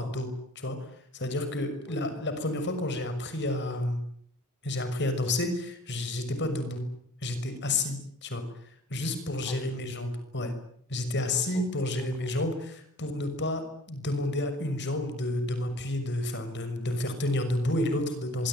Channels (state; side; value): normal; both; correlation 0.50